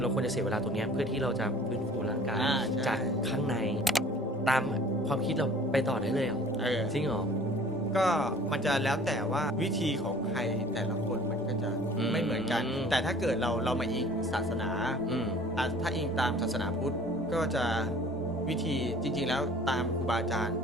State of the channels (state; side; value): normal; both; correlation 0.50